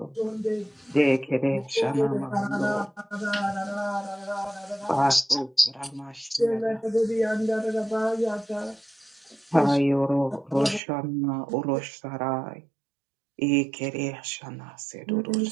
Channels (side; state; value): left; drops out; at 10.8 s